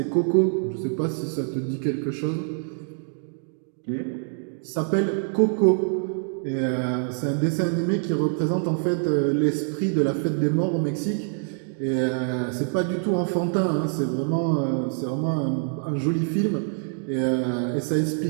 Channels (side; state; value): left; silent; 60 dB below the other